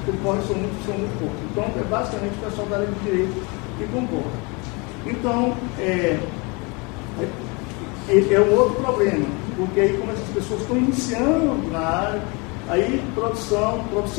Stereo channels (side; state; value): right; quieter; 29.1 dB